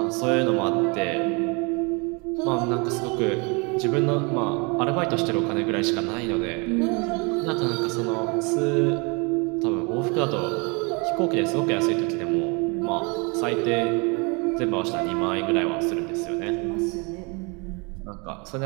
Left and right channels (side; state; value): left; quieter; 30.7 dB